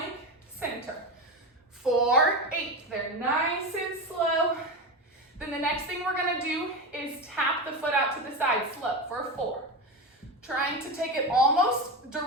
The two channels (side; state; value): both; normal; correlation 0.19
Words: center. 4, 8, they're nice and slow. Then the next thing we're gonna do is tap the foot out to the side slow for 4. Trying to take it almost